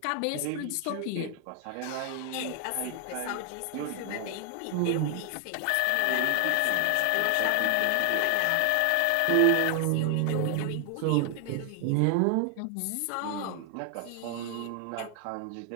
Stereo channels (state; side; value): different; both; correlation 0.00